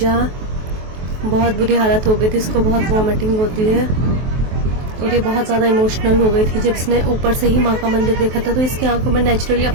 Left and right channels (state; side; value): late; left; 23 ms